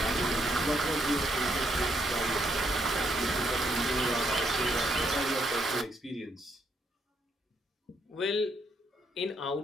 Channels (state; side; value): normal; both; correlation 0.74